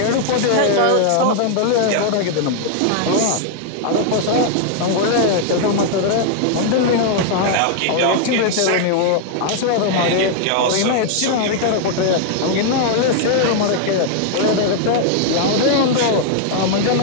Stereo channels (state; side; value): different; both; correlation 0.00